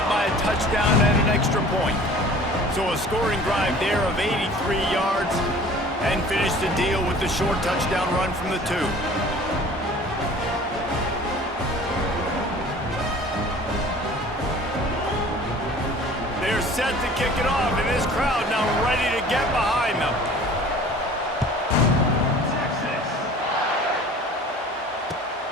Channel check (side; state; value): both; normal; correlation 0.46